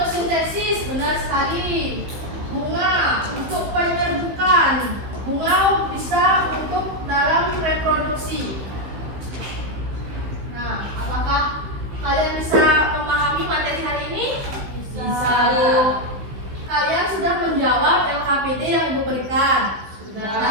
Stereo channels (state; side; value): late; left; 15 ms